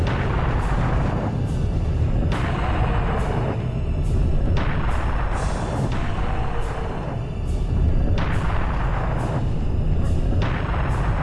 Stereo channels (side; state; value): both; identical; correlation 1.00